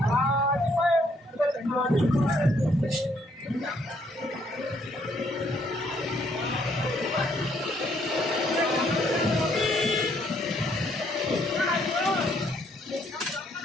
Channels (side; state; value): both; normal; correlation 0.69